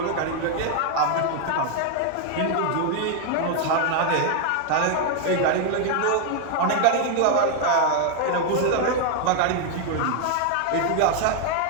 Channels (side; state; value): both; different; correlation 0.00